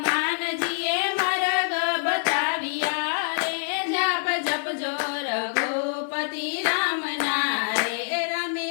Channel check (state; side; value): silent; right; digital silence